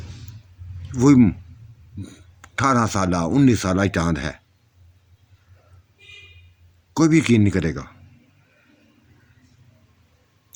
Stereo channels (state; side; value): identical; both; correlation 1.00